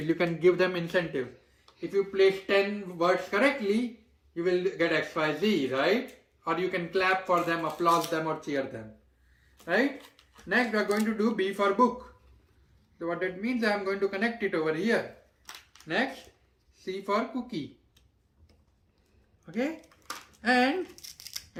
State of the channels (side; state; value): both; identical; correlation 1.00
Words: you can give them incentive. If you place 10 words correctly, you will get XYZ, right? Or you can clap for them, applaud them or cheer them, right? Next we are going to do B for book. So what that means, I am going to connect it over here. Next, C for cookie. Okay? And